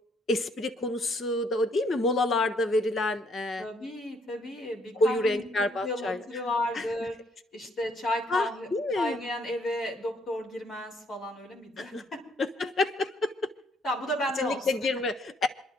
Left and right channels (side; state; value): both; normal; correlation 0.67